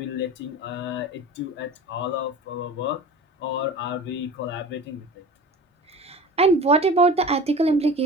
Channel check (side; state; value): both; normal; correlation 0.36